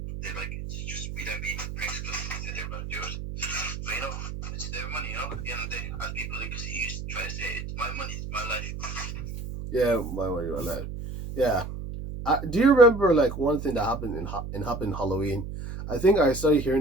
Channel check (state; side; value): noise; right; hum, 7 dB below the sound